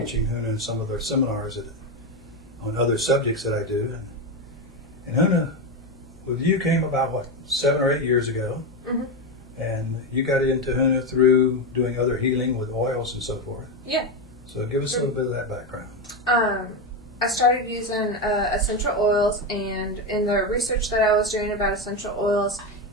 Huna in some of their seminars on other subjects that I do. And Huna, with you, came about, 7 or 8 years ago. Mm-hmm. And you got into Huna through doing other healing with oils and so forth. Yeah. So give us a little bit of that background. I started using essential oils, and in the research that I was doing about essential oils,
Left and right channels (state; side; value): normal; both; correlation 0.12